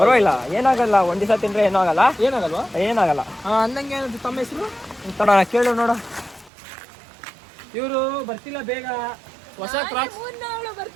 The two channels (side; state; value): left; drops out; at 6.5 s